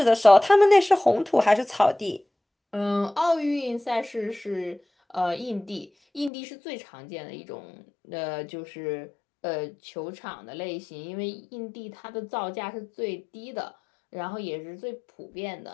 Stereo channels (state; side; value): drops out; right; at 6.3 s